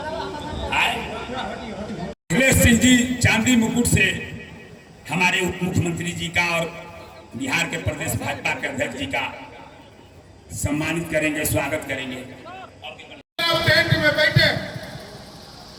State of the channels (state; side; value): identical; both; correlation 1.00